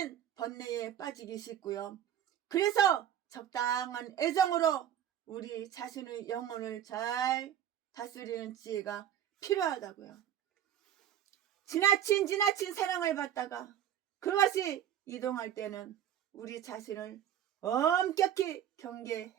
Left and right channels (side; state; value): left; quieter; 10.5 dB